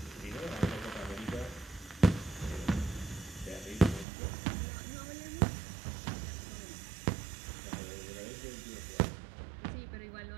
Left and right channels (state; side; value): drops out; left; at 4.0 s